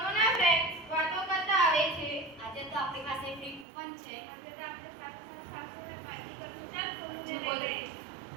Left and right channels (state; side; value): drops out; left; at 3.7 s